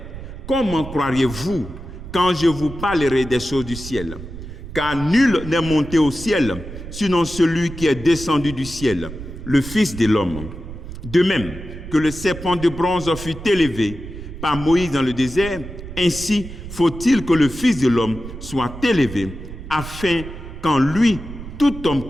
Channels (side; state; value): right; noise; rumble, 11 dB below the sound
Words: comment croiriez-vous quand je vous parlerai des choses du ciel? Car nul n'est monté au ciel, sinon celui qui est descendu du ciel, le Fils de l'homme. De même que le serpent de bronze fut élevé par Moïse dans le désert, ainsi faut-il que le Fils de l'homme soit élevé, afin qu'en lui, tout homme